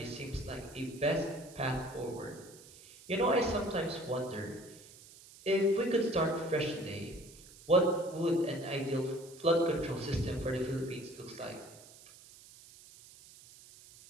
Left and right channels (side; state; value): right; noise; hiss, 20 dB below the sound